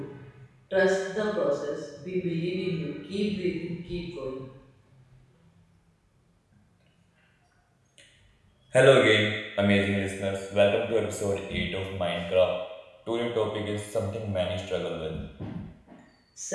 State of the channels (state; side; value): identical; both; correlation 1.00